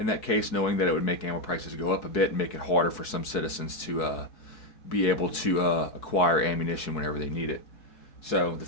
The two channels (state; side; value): late; right; 4.7 ms